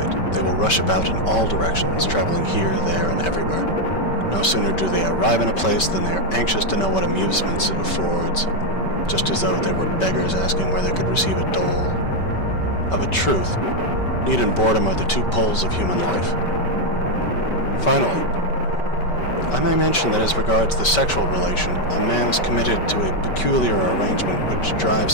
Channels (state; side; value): late; right; 5.2 ms